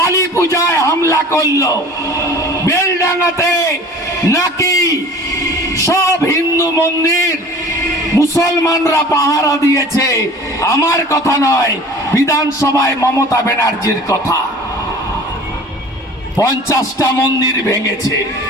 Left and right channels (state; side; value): normal; both; correlation 0.43